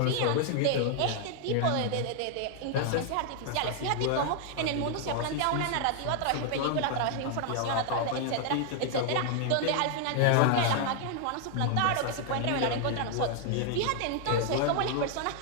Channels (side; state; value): both; different; correlation 0.00